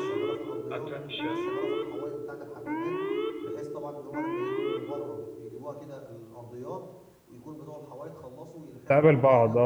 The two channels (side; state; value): both; identical; correlation 1.00